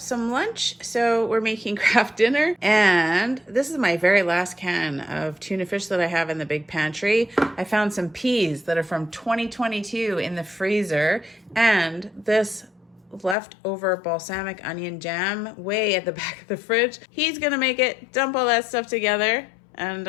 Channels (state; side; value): drops out; right; at 13.4 s